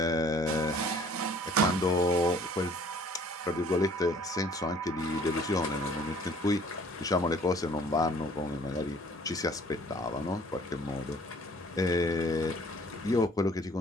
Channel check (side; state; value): both; normal; correlation 0.55